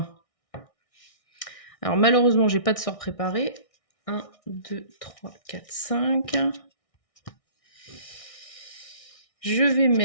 Alors malheureusement, j'ai pas de sort préparé. 1, 2, 3, 4, 5. Je vais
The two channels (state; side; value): late; right; 1.6 ms